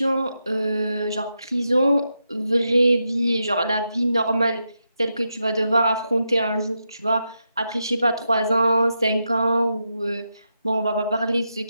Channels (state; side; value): inverted; both; correlation -0.86